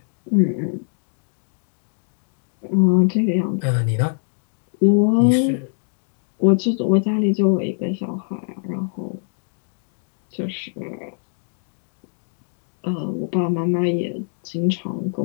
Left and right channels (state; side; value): silent; right; 64 dB below the other